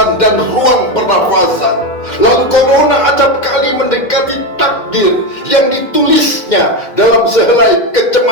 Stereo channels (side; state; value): right; late; 2.1 ms